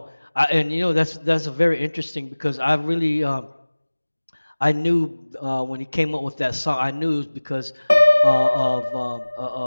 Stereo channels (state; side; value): inverted; both; correlation -1.00